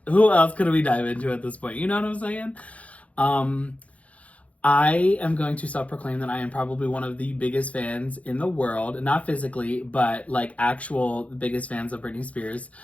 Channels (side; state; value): right; late; 0.066 ms